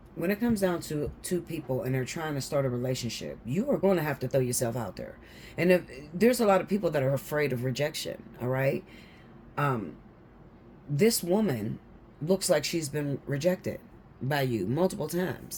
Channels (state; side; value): identical; both; correlation 1.00